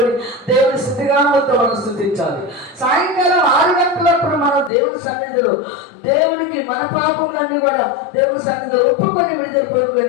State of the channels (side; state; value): right; drops out; at 4.7 s